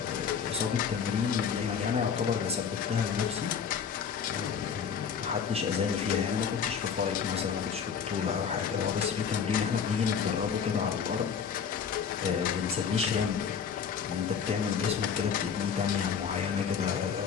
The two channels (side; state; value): right; quieter; 7.0 dB